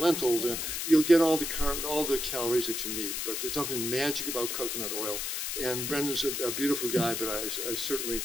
And you'll get all the calories that you need. But there's nothing magic about coconut oil. And Brendan's a beautiful guy, but I certainly...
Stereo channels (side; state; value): left; noise; hiss, 2 dB below the sound